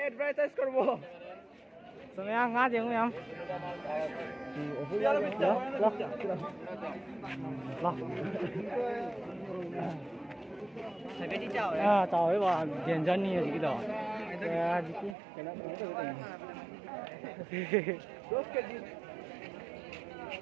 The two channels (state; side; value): drops out; left; at 15.2 s